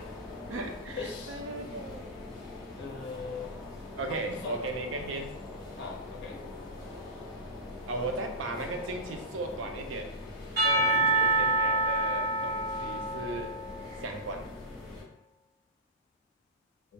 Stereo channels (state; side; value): normal; both; correlation -0.18